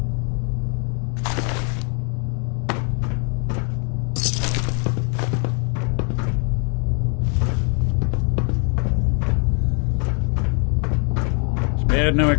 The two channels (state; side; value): quieter; right; 38.7 dB